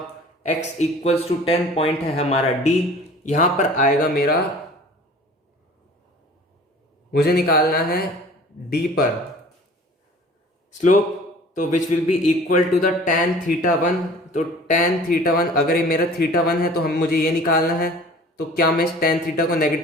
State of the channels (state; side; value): normal; both; correlation 0.46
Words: x इक्वल्स टू 10 पॉइंट है हमारा D, यहां पर आएगा मेरा, मुझे निकालना है D पर स्लोप, तो which will be equal to the tan theta 1। तो tan थीटा 1, अगर ये मेरा थीटा 1 है तो मुझे ये निकालना है, तो क्या मैं इस tan थीटा को